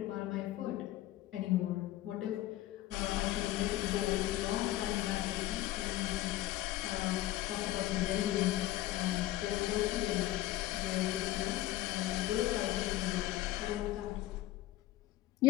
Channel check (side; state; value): right; quieter; 15.6 dB